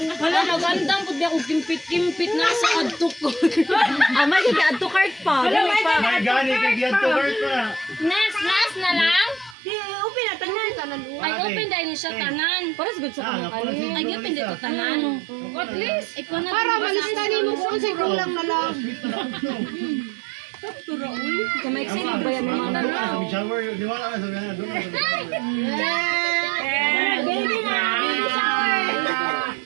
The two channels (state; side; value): drops out; left; at 9.6 s